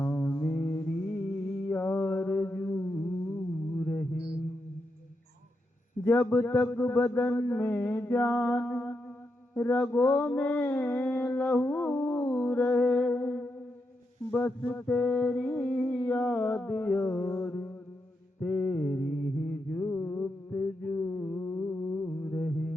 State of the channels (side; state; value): both; normal; correlation 0.84